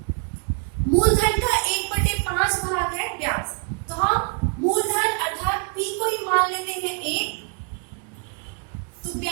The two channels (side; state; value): left; quieter; 39.4 dB